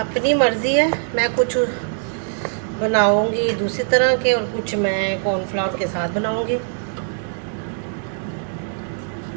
मर्ज़ी है। मैं कुछ बनाऊंगी दूसरी तरह के और कुछ मैं कॉर्नफ्लावर के साथ बनाऊंगी।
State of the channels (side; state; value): left; silent; digital silence